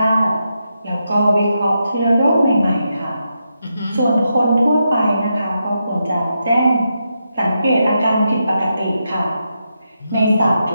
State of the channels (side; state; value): both; inverted; correlation -0.85